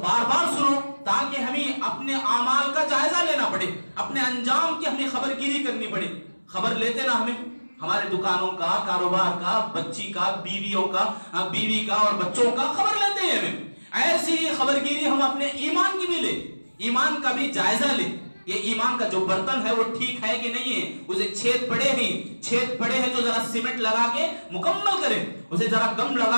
بار سنو، تاکہ ہمیں اپنے اعمال کا جائزہ لینا پڑے، اپنے انجام کی ہمیں خبر گیری کرنی پڑے. خبر لیتے نا ہمیں ہمارے دکانوں کا، کاروبار کا، بچی کا، بیویوں کا، بیوی کا اور بچوں کا خبر لیتے ہیں ہمیں. ایسی خبر گیری ہم اپنے ایمان کی بھی لیں، ایمان کا بھی جائزہ لیں. یہ ایمان کا جو برتن ہے وہ ٹھیک ہے کہ نہیں ہے، اسے چھید پڑے ہیں تو ذرا سیمنٹ لگا کے مکمل کریں، اسے ذرا گم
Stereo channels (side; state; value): both; inverted; correlation -1.00